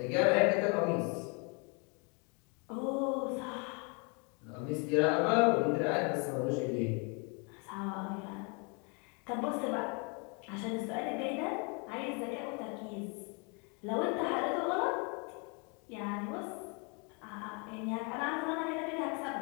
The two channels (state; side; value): quieter; right; 34.0 dB